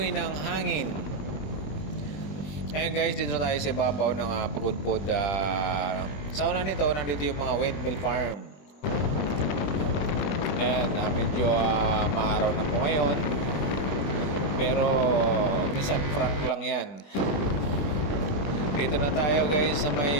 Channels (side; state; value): right; late; 21 ms